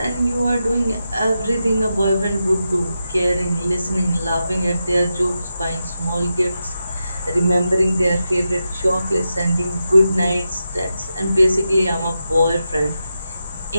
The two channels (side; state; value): both; inverted; correlation -0.88